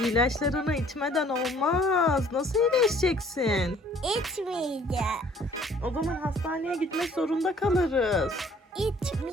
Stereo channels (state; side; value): normal; both; correlation 0.57